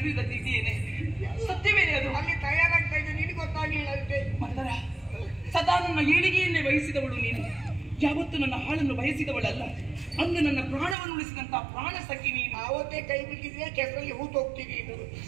ಇದೆಯೇನೆ? ಸತ್ಯವೇ ಅದು. ಅಲ್ಲಿ ತಯಾರಾಗ್ತಾ ಇದ್ದೆ, ನಿನಗೆ ಗೊತ್ತಾಗಲಿಲ್ಲ ಅಷ್ಟೇ. ಮತ್ತರ ಸದಾ ನನ್ನ ಏಳಿಗೆಯನ್ನೇ ಬಯಸಿದವಳು ನೀನು. ಯಾವತ್ತು ನನ್ನ ಹಾಳನ್ನು ಬಯಸಿದವಳಲ್ಲ. ಅಂದು ನನ್ನ ಪ್ರಾಣವನ್ನು ಉಳಿಸಿದಂತಹ ಪ್ರಾಣ ಸಖಿ ನೀನು. ಅವತ್ತೇ ಕೈ ಬಿಟ್ಟಿದ್ರೆ ಕೆಸರಲ್ಲಿ ಹೂತು ಹೋಗ್ತೀವಿ.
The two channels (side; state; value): left; drops out; at 11.0 s